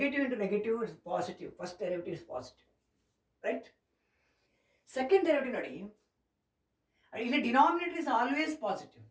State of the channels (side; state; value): both; identical; correlation 1.00